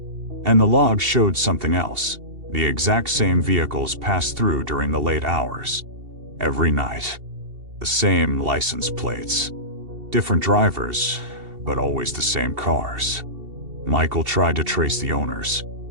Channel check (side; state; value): left; late; 2.7 ms